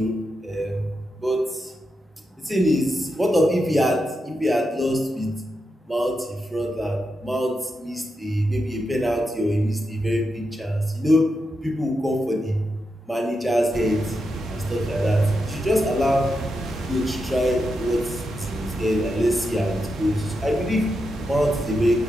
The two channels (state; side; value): normal; both; correlation 0.86